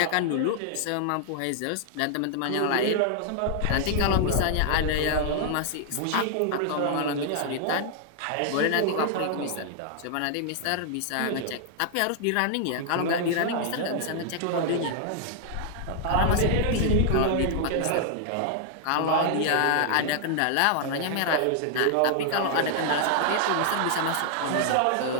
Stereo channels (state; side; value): different; both; correlation 0.00